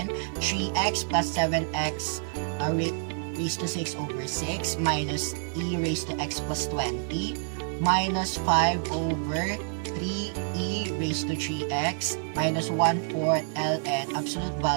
3x plus 7x raised to 6 over 6 minus e raised to x plus 20 minus 5 over 3e raised to 3x minus 1/4 ln absolute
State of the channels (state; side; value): silent; left; 56 dB below the other